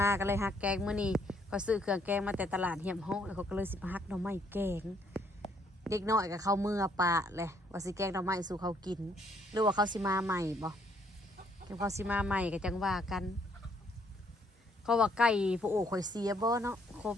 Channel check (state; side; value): normal; both; correlation 0.68